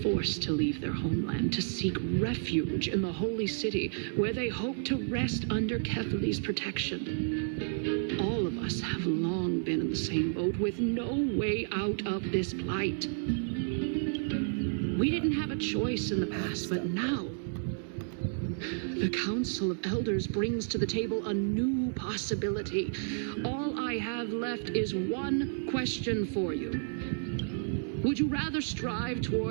forced to leave their homeland to seek refuge in the holy city, where they hope to rest under Kefali's protection. All of us have long been in the same boat, with no way out of this plight. We didn't have a choice in the past, but now the Council of Elders brings to the table a new possibility. All I have left is one question for you. Would you rather strive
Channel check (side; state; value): left; silent; digital silence